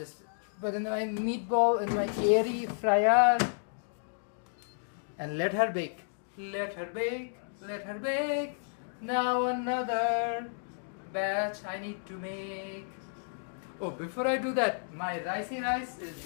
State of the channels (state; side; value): silent; right; digital silence